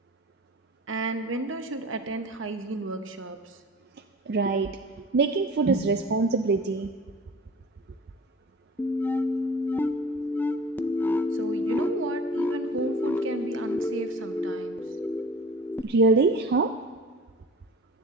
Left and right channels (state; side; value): normal; both; correlation 0.41